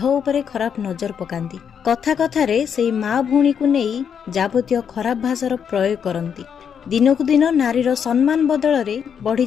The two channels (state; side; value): quieter; right; 7.6 dB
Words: उपरे खराब नजर पकांती। कथा कथारे सेई माँ भूणी को नहीं जाबतीय खराब भाषार प्रयोग करती। दिनकू दिन नारीर सम्मान बदल रे बढ़ी